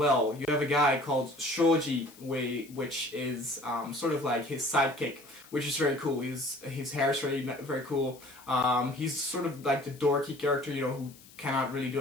You have a guy called Shoji, which is sort of like his sidekick, which is very cool. His hair is very cool. He's sort of like the dorky character, who cannot really do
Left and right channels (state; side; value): noise; left; hiss, 22 dB below the sound